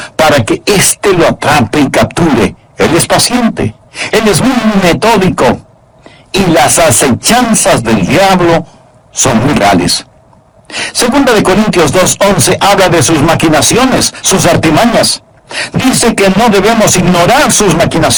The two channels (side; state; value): both; identical; correlation 1.00